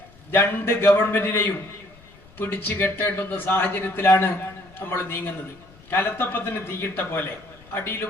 2 ഗവൺമെന്റിനെയും പിടിച്ചു കെട്ടേണ്ടുന്ന സാഹചര്യത്തിലാണ് നമ്മൾ നീങ്ങുന്നത്. കലത്തപ്പത്തിന് തീയിട്ട പോലെ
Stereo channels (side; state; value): left; noise; rumble, 25 dB below the sound